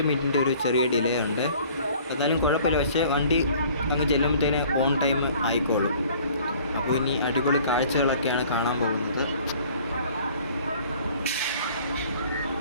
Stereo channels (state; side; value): inverted; both; correlation -0.52